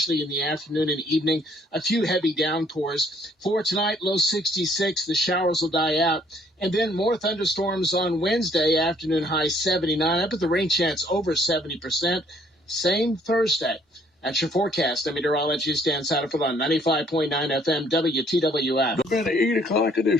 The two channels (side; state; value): both; normal; correlation 0.63